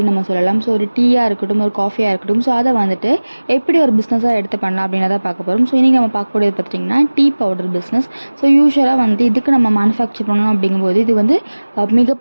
நம்ம சொல்லலாம். ஸோ ஒரு டீயாக இருக்கட்டும், ஒரு காஃபியாக இருக்கட்டும். ஸோ அதை வந்துட்டு எப்படி ஒரு பிஸ்னஸாக எடுத்து பண்ணலாம் அப்படின்றத பார்க்க போகிறோம். ஸோ இன்றைக்கி நம்ம பார்க்கக்கூடியது பார்த்திங்கன்னா டீ பவுடர் பிஸ்னஸ். ஸோ யூஸ்வலாக வந்து இதுக்கு நம்ம மேனுஃபேக்சர் பண்ணணும் அப்படிங்கும்போது இது வந்து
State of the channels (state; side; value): inverted; both; correlation -1.00